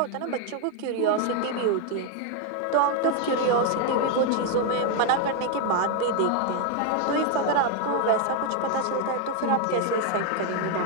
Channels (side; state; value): both; different; correlation 0.01